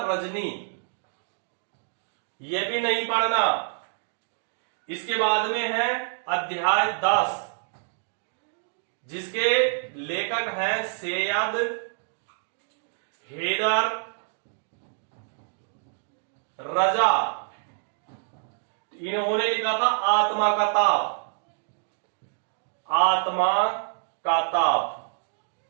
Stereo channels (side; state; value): left; silent; digital silence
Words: रजनी, ये भी नहीं पढ़ना। इसके बाद में है अध्याय 10, जिसके लेखक हैं सैयद हैदर रजा। इन्होंने लिखा था आत्मा का ताप। आत्मा का ताप,